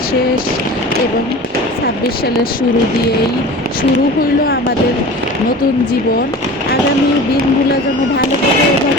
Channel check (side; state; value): both; normal; correlation 0.37